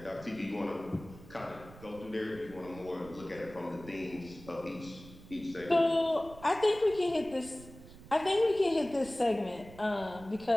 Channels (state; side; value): noise; right; rumble, 18 dB below the sound